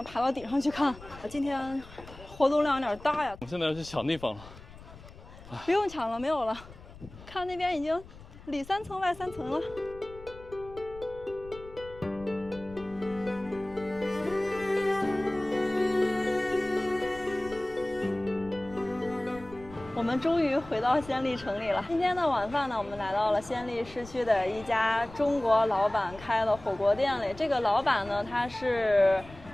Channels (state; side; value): noise; left; rumble, 18 dB below the sound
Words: 爬到顶上去看。今天活动量有点大呀。我们现在要去抢地方了。不用抢了，没有了。看那边已经里3层外3层了。我们终于回到暹粒城里了。今天的晚饭呢，我们来到了暹粒市区的一家中国老板开的火锅店里。这个老板呢，他是